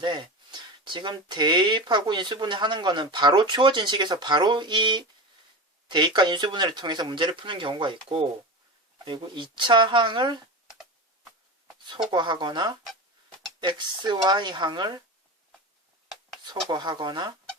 지금 대입하고 인수분해 하는 거는 바로 주어진 식에서 바로 이 대입과 인수분해를 통해서 문제를 푸는 경우가 있고, 그리고 2차 항을 소거하거나 xy 항을 소거하거나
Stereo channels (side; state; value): both; normal; correlation 0.25